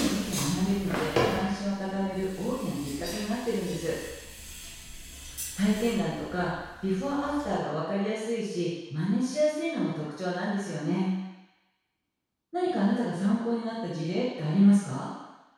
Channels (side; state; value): both; identical; correlation 1.00